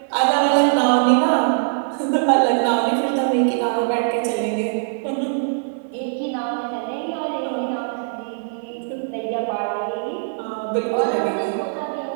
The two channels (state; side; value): silent; left; 65 dB below the other